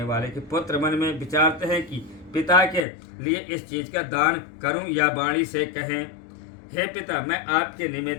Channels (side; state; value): right; drops out; at 2.9 s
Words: वाले के पुत्र मन में विचारते हैं कि पिता के लिए इस चीज का दान करूं या वाणी से कहें, हे पिता मैं आपके